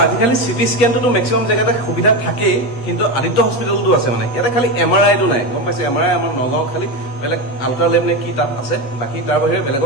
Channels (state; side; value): late; right; 8.1 ms